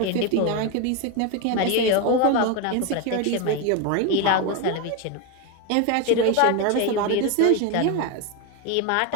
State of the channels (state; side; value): different; both; correlation 0.02